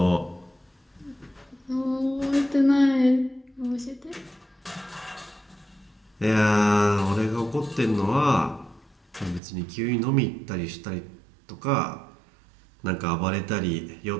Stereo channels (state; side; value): drops out; left; at 9.4 s